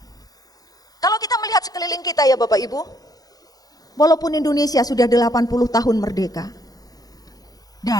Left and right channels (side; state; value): right; late; 0.18 ms